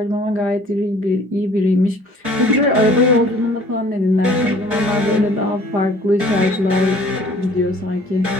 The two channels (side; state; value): left; late; 4.6 ms